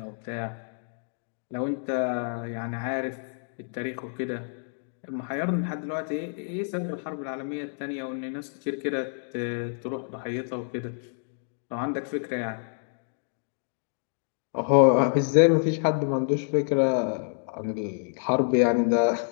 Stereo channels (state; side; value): silent; right; digital silence